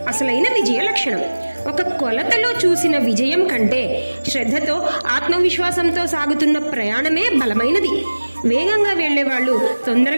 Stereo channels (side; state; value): both; inverted; correlation -1.00